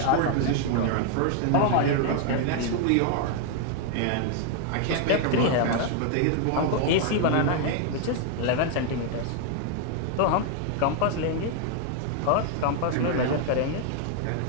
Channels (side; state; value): both; different; correlation 0.00